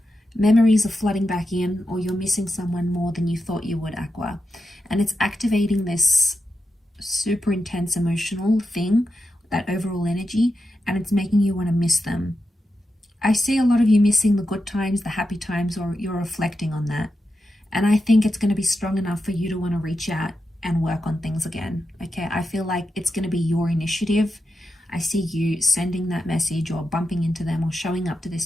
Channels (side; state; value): both; normal; correlation 0.89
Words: Memories are flooding back in, or you're missing someone more than you thought you would, Aqua. And it's activating this super intense emotional thing, that overall energy, and it's making you want to miss them. I see a lot of you missing the good times, the happy times, or you're reflecting on that. And I think it's going to be strong enough for you to want to reach out and work on things again, okay? I feel like it's going to be your initiative. I see you sending that message or bumping into them or showing up to